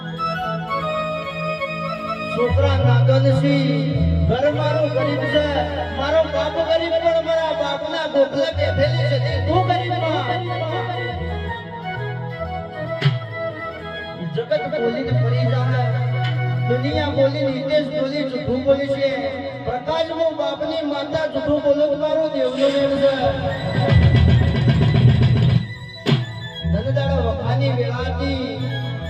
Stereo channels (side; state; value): both; identical; correlation 1.00